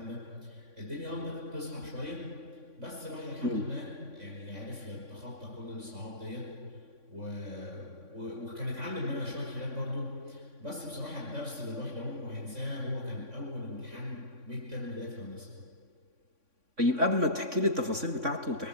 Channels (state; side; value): late; left; 3.6 ms